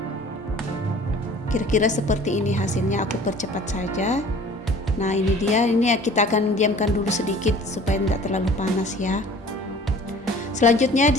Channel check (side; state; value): both; normal; correlation 0.47